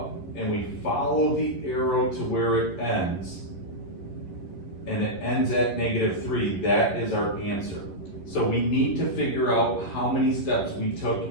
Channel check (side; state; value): right; late; 11 ms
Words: and we follow the arrow to where it ends, and it ends at -3, that is our answer. So we need to figure out how many steps we took